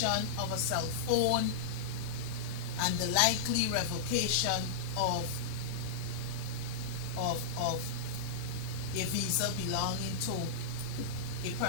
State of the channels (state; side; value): quieter; right; 5.1 dB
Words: of a cell phone and the likely revocation of a visa belonging to a